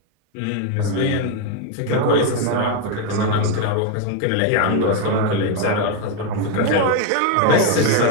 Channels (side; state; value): both; different; correlation 0.01